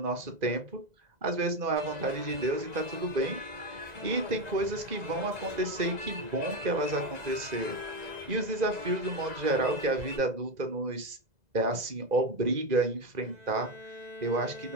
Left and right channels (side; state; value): left; late; 2.0 ms